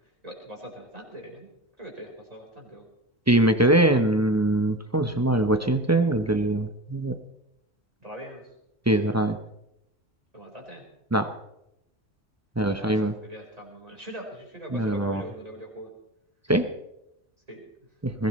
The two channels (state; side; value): normal; both; correlation 0.31